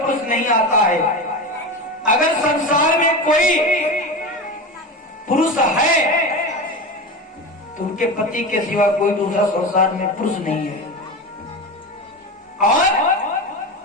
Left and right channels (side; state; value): both; normal; correlation 0.24